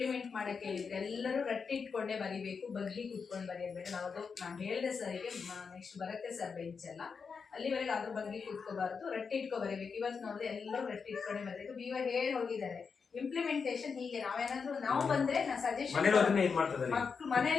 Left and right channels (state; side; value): quieter; right; 5.6 dB